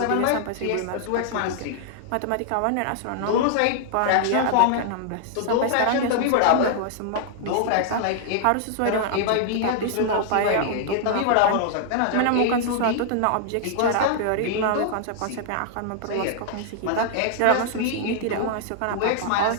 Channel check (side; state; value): both; different; correlation -0.01